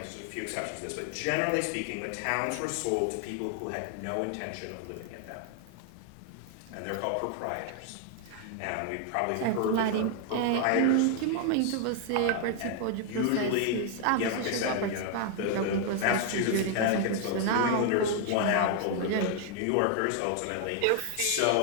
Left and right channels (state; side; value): different; both; correlation 0.00